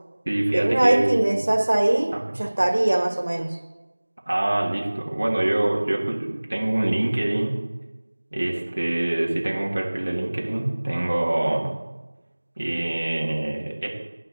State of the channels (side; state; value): both; inverted; correlation -1.00